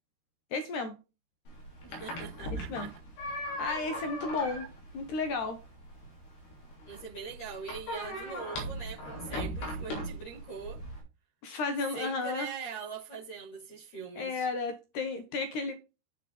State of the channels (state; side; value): late; right; 13 ms